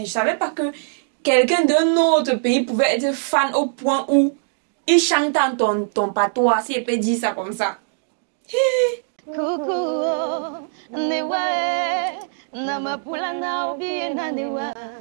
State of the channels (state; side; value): silent; left; digital silence